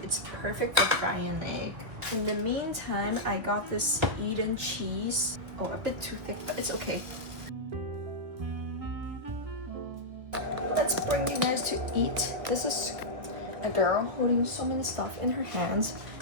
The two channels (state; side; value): late; left; 1.6 ms